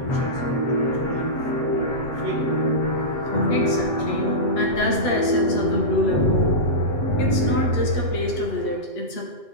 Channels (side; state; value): right; late; 7.8 ms